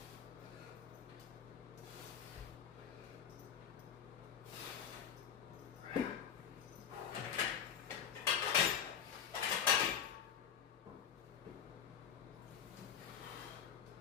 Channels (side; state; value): right; quieter; 8.1 dB